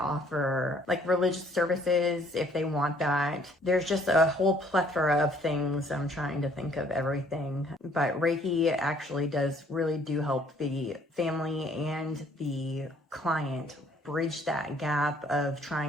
religious services if they want that. There's just a whole plethora of things. I'm trying to think of everything, but Reiki actually really do help the family and the client bridge that gap of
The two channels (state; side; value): normal; both; correlation 0.61